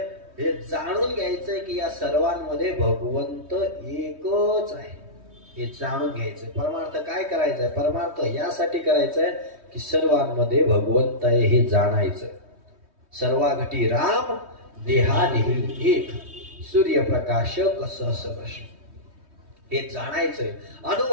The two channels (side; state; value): left; late; 3.2 ms